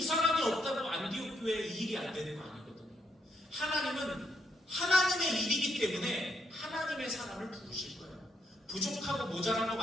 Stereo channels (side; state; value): both; normal; correlation 0.76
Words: 사람이 없다고 안디옥 교회에 이 일이 안 되는 거 아니거든요. 하나님은 하나님의 일이기 때문에 하나님의 사람을 부르실 거예요. 부족하고 모자란 것